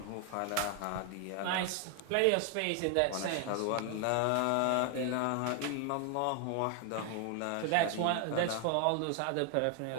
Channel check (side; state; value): both; different; correlation 0.00